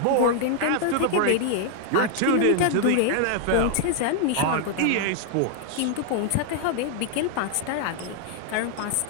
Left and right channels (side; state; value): both; different; correlation 0.00